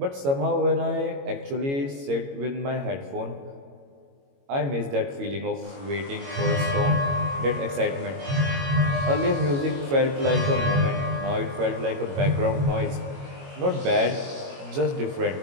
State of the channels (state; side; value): late; left; 22 ms